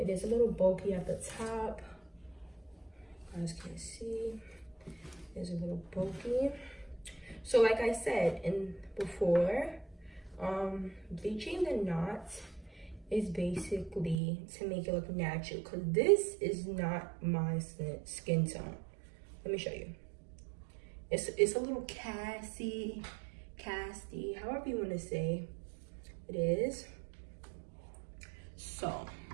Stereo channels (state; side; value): drops out; left; at 14.2 s